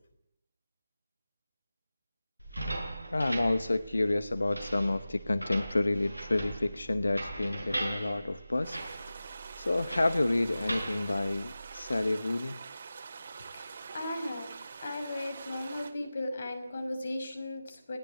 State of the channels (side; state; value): both; inverted; correlation -0.96